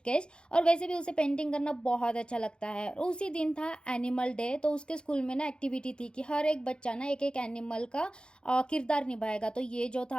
और वैसे भी उसे पेंटिंग करना बहुत अच्छा लगता है। और उसी दिन था एनिमल डे, तो उसके स्कूल में ना एक्टिविटी थी कि हर एक बच्चा ना एक एक एनिमल का किरदार निभाएगा। तो ये जो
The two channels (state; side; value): late; right; 0.051 ms